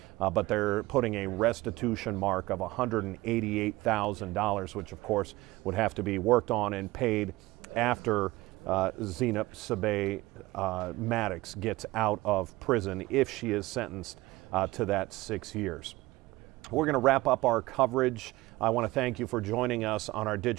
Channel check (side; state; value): left; quieter; 19.5 dB